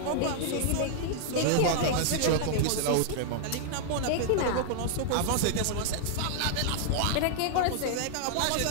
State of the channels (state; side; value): different; both; correlation -0.01